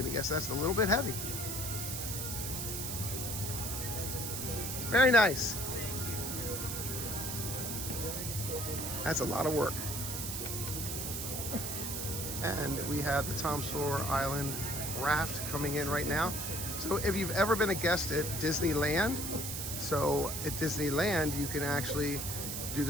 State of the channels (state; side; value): noise; right; hiss, 4 dB below the sound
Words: guess that's a little bit heavy. Very nice. That's a lot of work. And we have the Tom Sawyer Island raft coming in right now. So if you've ever been a guest at Disneyland, so at Disneyland you can actually do